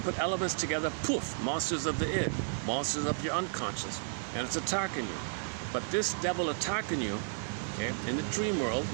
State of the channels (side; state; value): left; silent; digital silence